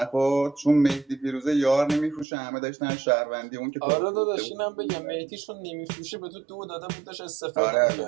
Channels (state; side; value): drops out; left; at 2.2 s